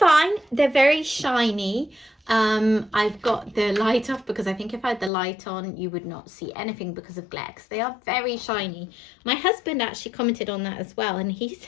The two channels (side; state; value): right; drops out; at 5.1 s